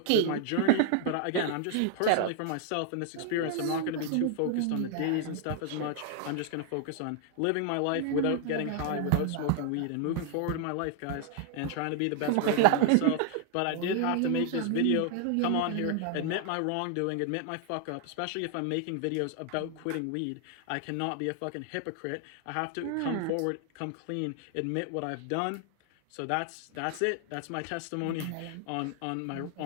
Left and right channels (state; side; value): different; both; correlation 0.00